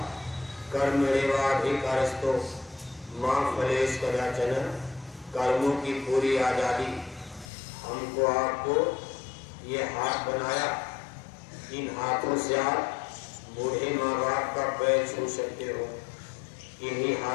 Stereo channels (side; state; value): right; drops out; at 7.5 s